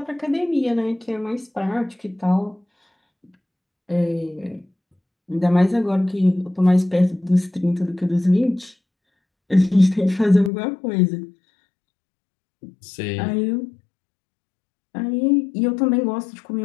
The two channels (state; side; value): drops out; right; at 10.5 s